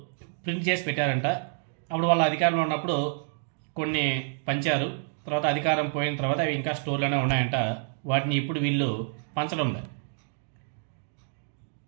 ప్రింట్ చేసి పెట్టారంట. అప్పుడు వాళ్ళ అధికారంలో ఉన్నప్పుడు కొన్ని పంచారు. తర్వాత అధికారం పోయిన తర్వాత అవి ఇంకా స్టోర్లోనే ఉన్నాయంట. వాటిని ఇప్పుడు వీళ్ళు పంచడం లేదు.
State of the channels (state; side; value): silent; left; digital silence